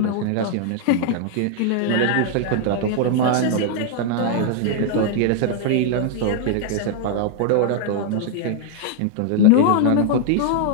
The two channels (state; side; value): different; both; correlation 0.00